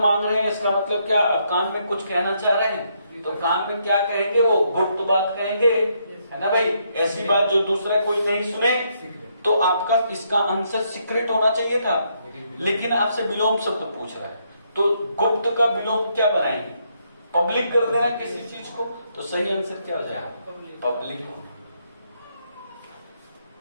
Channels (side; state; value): both; inverted; correlation -0.75